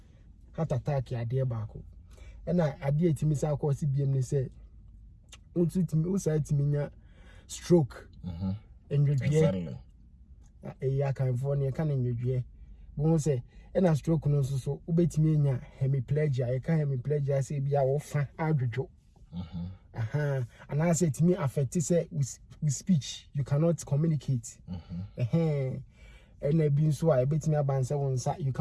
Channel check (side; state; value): both; identical; correlation 1.00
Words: heart attack ya de baako na ade etimi sa akọ si biem ne say untu timi usa timi nya stroke Exactly. Ya kan for ne kan nwedwe bo say na stroke no so ubetimi nya hemiplegia e ka hemiplegia say bia wo fa adwodwo and I say timi affect say with speech you cannot communicate and a being so I bet me about you